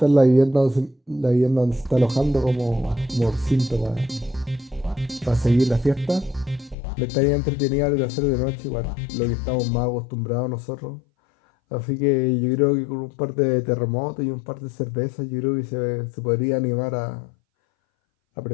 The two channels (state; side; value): drops out; right; at 6.8 s